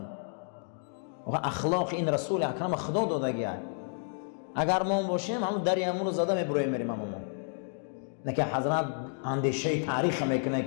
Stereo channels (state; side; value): silent; right; digital silence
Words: اخلاق این رسول اکرم خدا داده گیه. اگر ما باشیم همون دریمون رو زده میبرویم میریم. همون نه که حضرت اندیشه تاریخ میکنه